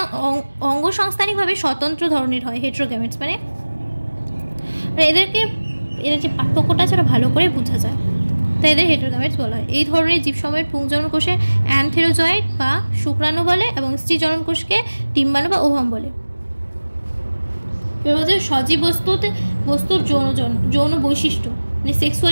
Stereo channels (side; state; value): both; inverted; correlation -1.00